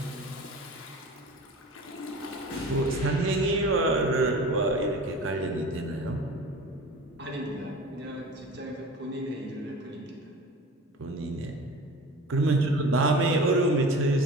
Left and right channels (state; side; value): normal; both; correlation 0.38